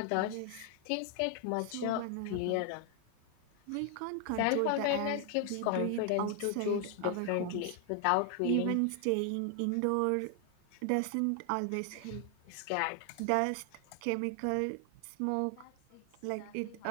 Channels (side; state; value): both; different; correlation 0.00